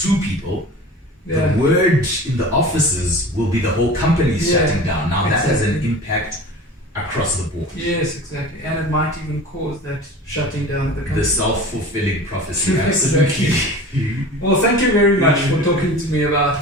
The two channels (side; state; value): both; normal; correlation 0.37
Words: 2 people, Yeah. the word in the offices will be the whole company is Yeah, shutting down. Now that has an exactly. impact across the board. Yes, exactly. And it might even cause that shutting down of the company. The self-fulfilling prophecy, Exactly. absolutely. Well, thank you very much for talking to me about